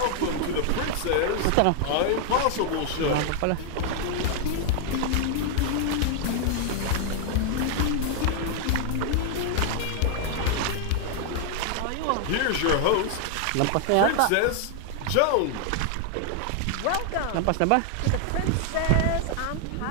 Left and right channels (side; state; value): both; different; correlation 0.00